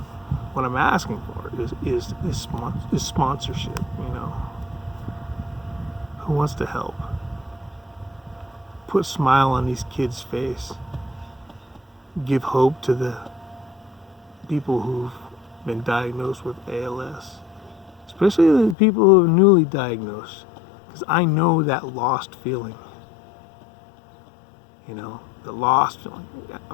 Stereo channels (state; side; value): drops out; right; at 18.8 s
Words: for is sponsorship. Who wants to help? Put a smile on these kids' face. Give hope to the people who've been diagnosed with ALS, especially the people who are newly diagnosed, because I know that lost feeling. The lost feeling.